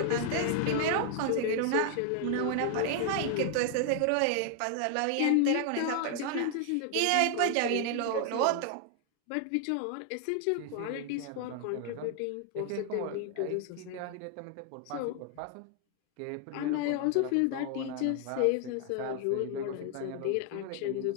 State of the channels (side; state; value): both; different; correlation 0.00